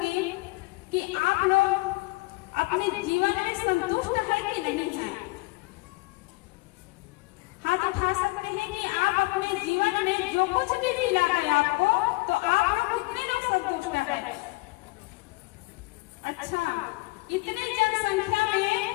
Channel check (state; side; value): quieter; right; 24.0 dB